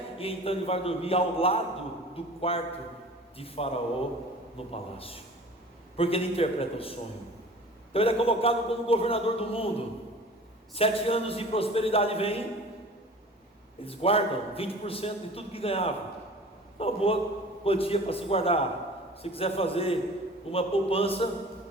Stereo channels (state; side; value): normal; both; correlation 0.43